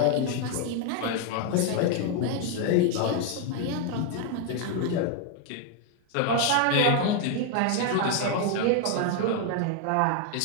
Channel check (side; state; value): both; different; correlation 0.00